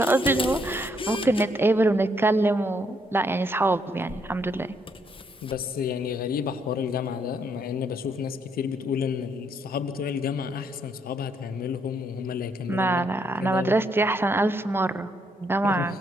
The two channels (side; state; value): both; normal; correlation 0.72